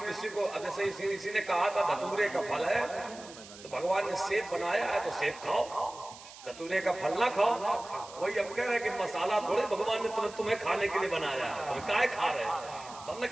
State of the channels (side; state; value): right; noise; hiss, 17 dB below the sound